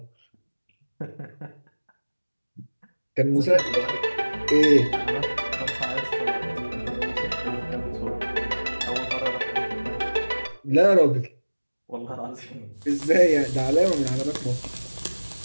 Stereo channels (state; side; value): inverted; both; correlation -1.00